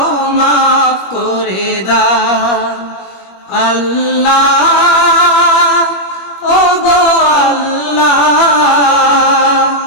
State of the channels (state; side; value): late; right; 21 ms